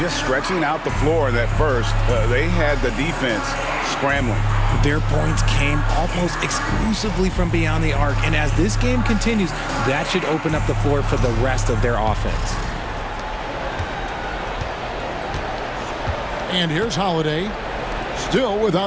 stretching out the floor in that first. They had the defense scrambling. Their points came almost exclusively from beyond the arc. And as this game continues, that should open up the floor for the rest of their offense. And here's Holiday, still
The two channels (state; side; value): identical; both; correlation 1.00